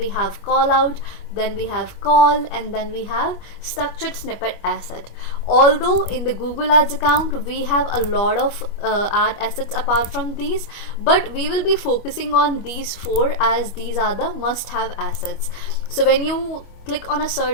have call out, then we have call, and then we have structured snippet asset. Although in the Google Ads account we have a lot of ad assets apart from these, but we will be focusing on these 4 as these are the must-have assets. So when you click on a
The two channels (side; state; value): right; late; 25 ms